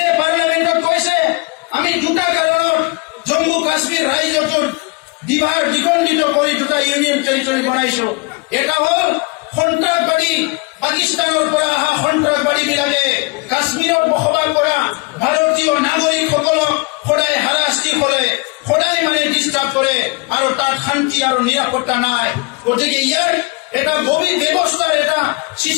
পাৰ্লামেণ্টত কৈছে আমি দুটা কাৰণত জম্মু কাশ্মীৰ ৰাজ্যটোৰ দ্বিখণ্ডিত কৰি দুটা ইউনিয়ন টেৰিটৰি বনাইছো। এটা হ'ল সন্ত্ৰাসবাদী পাকিস্তানৰ পৰা অহা সন্ত্ৰাসবাদীবিলাকে কাশ্মীৰত বসবাস কৰা ভাৰতীয় নাগৰিকসকলক সদায় হাৰাশাস্তি কৰে, সদায় ডিস্টার্ব করে আর তার শান্তি আর নিরাপত্তা নাই। গতিকে ইয়ার এটা গভীর ব্যবস্থার এটা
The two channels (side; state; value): right; quieter; 27.5 dB